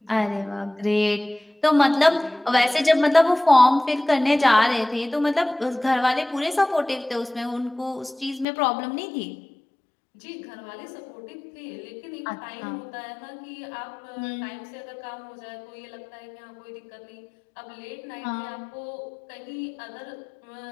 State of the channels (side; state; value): right; drops out; at 8.5 s